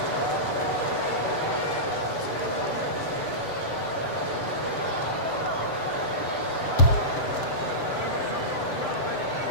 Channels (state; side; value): late; right; 7.4 ms